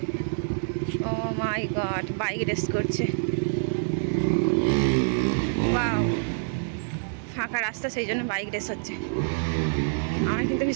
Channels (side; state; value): left; silent; 61 dB below the other